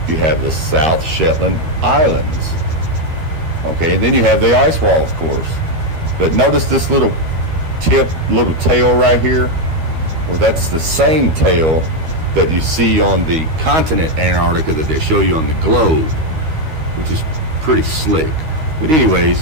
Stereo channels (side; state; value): left; late; 13 ms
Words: you have the South Shetland Islands. Okay, and then you have the ice wall, of course. But notice this little tail right here. Well, that's the same tail that you see on the continent Antarctica that they show you on the globe, which is pretty slick. But